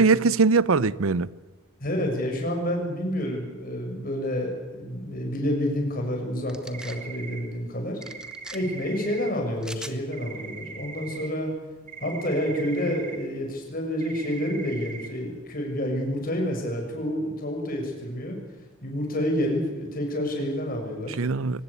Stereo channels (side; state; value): both; normal; correlation 0.37